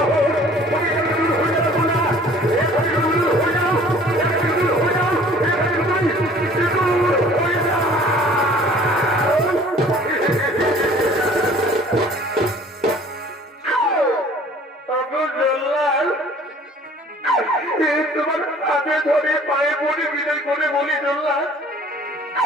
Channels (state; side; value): normal; both; correlation 0.51